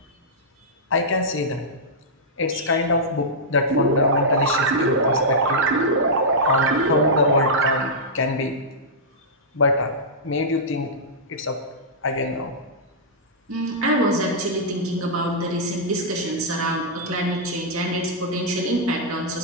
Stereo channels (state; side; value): normal; both; correlation -0.12